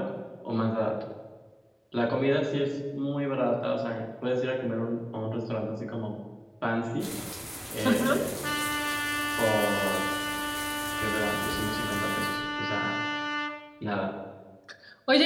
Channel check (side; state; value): both; identical; correlation 1.00